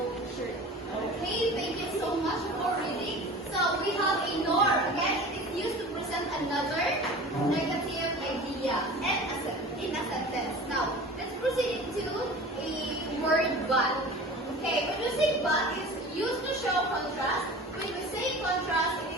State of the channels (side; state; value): both; normal; correlation 0.38